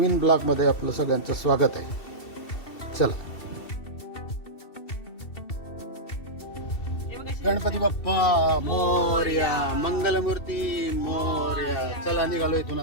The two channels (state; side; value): late; right; 2.7 ms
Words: ब्लॉगमध्ये आपलं सगळ्यांचं स्वागत आहे. चला, गणपती बाप्पा मोरया, मंगलमूर्ती मोरया. चला निघालो इथून